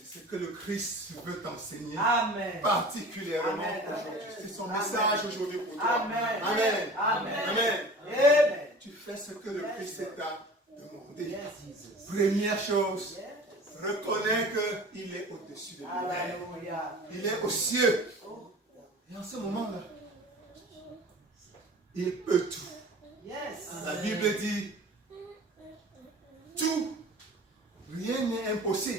ce que le Christ veut t'enseigner Amen. particulièrement Amen. aujourd'hui. C'est son Amen. message aujourd'hui pour toi. Amen. Amen. Amen. Amen. Amen. Tu fais ce que le Christ t'a demandé. Yes, Jesus. Première chose, Yes. reconnais qu'il est au-dessus de l'univers. Hallelujah. Il est aux cieux. Oh, Et en ce moment-là, il peut tout. yes. La Bible dit, tout, rien n'est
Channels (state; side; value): normal; both; correlation 0.41